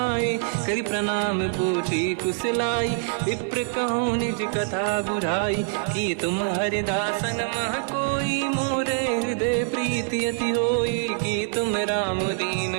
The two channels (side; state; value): left; silent; 62 dB below the other